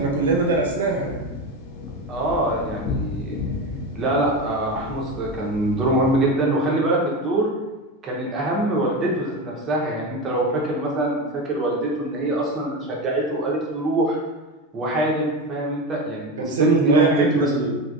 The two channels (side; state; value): both; normal; correlation 0.20